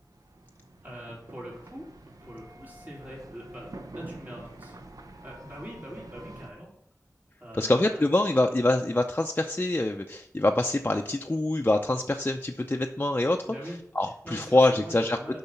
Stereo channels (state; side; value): normal; both; correlation 0.89